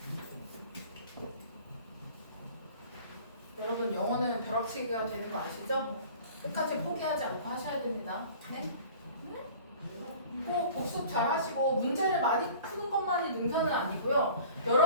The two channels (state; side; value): inverted; both; correlation -0.45